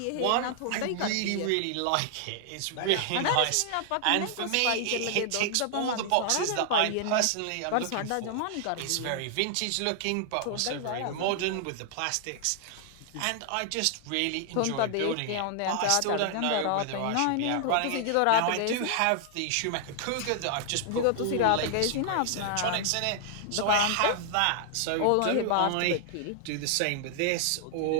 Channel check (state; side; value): different; both; correlation 0.00